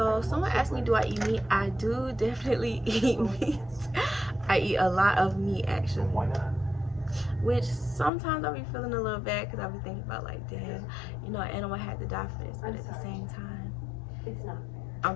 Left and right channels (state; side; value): drops out; right; at 8.1 s